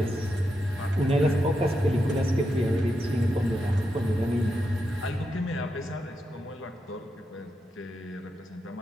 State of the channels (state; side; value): normal; both; correlation 0.85